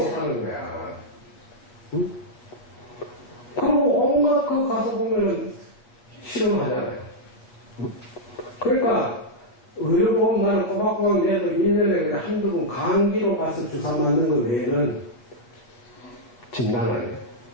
사는 거야. 응? 그리고 온갖 거 가서 보면은 실험하잖아요. 응? 그러니까 의료보험 나는 꼬박꼬박 내도 1년에 한두 번 감기로 가서 주사 맞는 거 외에는 진단 안 해요.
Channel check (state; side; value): late; right; 8.2 ms